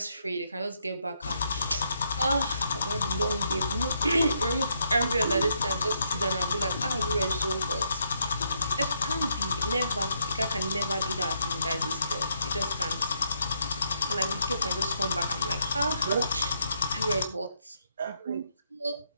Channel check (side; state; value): both; inverted; correlation -0.75